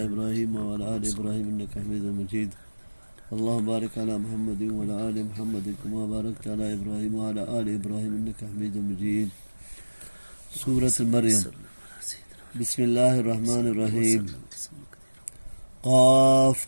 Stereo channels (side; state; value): both; inverted; correlation -1.00